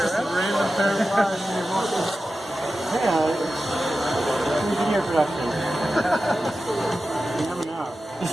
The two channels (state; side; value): normal; both; correlation 0.93